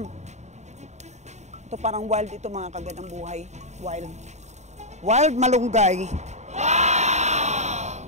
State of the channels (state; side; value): late; left; 0.33 ms